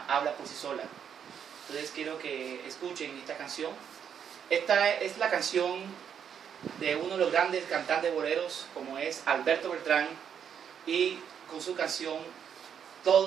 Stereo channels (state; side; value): quieter; left; 8.1 dB